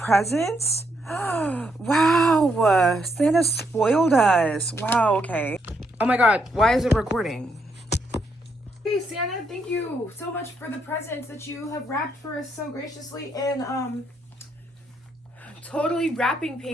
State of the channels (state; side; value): normal; both; correlation 0.76